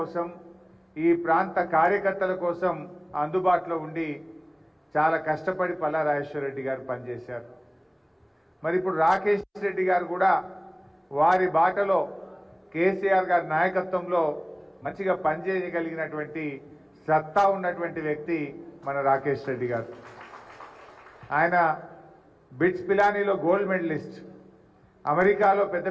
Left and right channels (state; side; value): identical; both; correlation 1.00